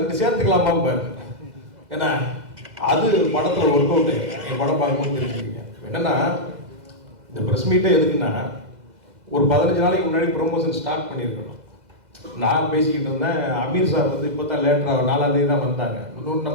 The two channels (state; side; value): late; left; 2.0 ms